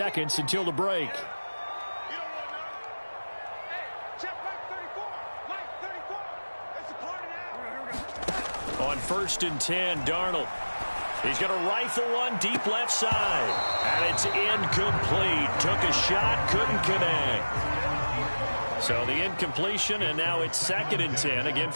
until the break. On 1st and 10, Darnold. He's going to rifle one deep left side. And it's incomplete. Took a shot, couldn't connect. So the incompletion, and now it's 2nd and 10, again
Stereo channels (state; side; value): inverted; both; correlation -1.00